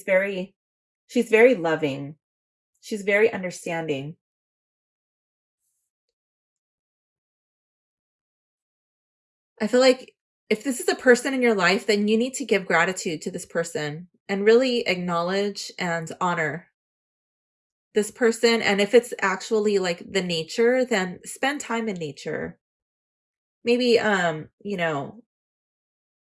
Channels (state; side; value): identical; both; correlation 1.00